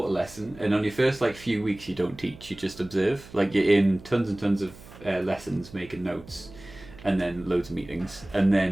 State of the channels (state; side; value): noise; right; hum, 19 dB below the sound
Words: a lesson, and on your first few weeks you don't teach, you just observe. Like you're in tons and tons of lessons, making notes, and then loads of meetings, and